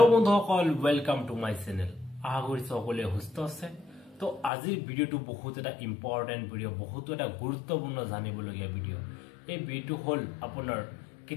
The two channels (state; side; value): drops out; right; at 4.5 s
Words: বন্ধুসকল, ওয়েলকাম টু মাই চ্যানেল। আশা কৰিছো সকলোৱে সুস্থ আছে। তো আজিৰ ভিডিওটো বহুত এটা ইম্পৰ্টেন্ট ভিডিও, বহুত এটা গুৰুত্বপূৰ্ণ জানিবলগীয়া ভিডিও। এই ভিডিওটো হল আপোনাৰ